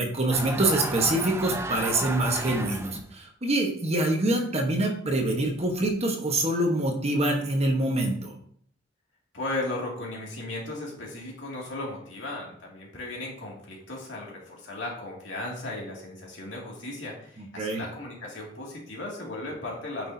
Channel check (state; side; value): normal; both; correlation 0.49